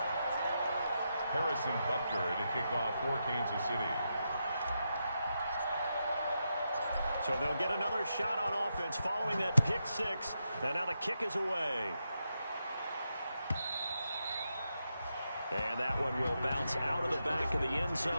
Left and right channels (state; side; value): inverted; both; correlation -0.85